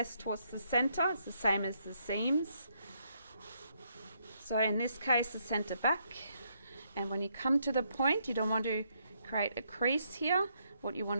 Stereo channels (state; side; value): inverted; both; correlation -0.74